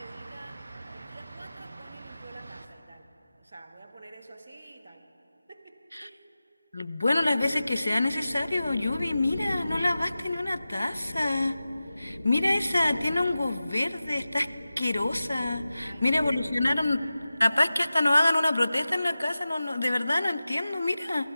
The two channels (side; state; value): both; inverted; correlation -0.95